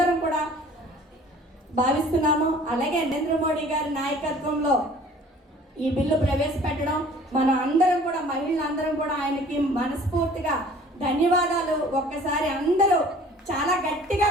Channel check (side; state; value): both; normal; correlation 0.50